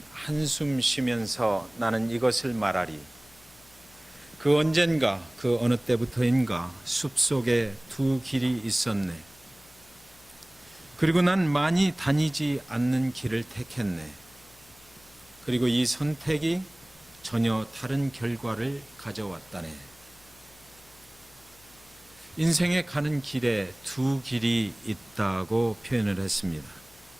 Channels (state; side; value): noise; left; hum, 27 dB below the sound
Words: 한숨 쉬면서 나는 이것을 말하리. 그 언젠가 그 어느 때부터인가 숲속에 두 길이 있었네. 그리고 난 많이 다니지 않는 길을 택했네. 그리고 이 선택이 전혀 다른 결과를 가져왔다네. 인생에 가는 길에 두 길이 있다고 표현을 했습니다.